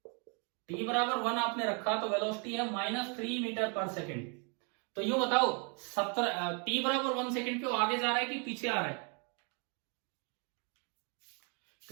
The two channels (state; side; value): quieter; left; 36.5 dB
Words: t बराबर 1 आपने रखा तो वेलोसिटी है -3 मीटर पर सेकंड। तो यूं बताओ, t बराबर 1 सेकंड पे वो आगे जा रहा है कि पीछे आ रहा है?